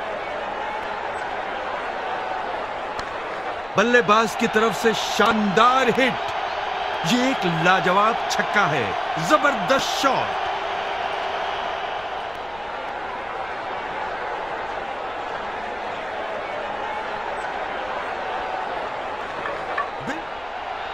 बल्लेबाज की तरफ से शानदार हिट। ये एक लाजवाब छक्का है, जबरदस्त शॉट।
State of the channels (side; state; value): left; noise; rumble, 22 dB below the sound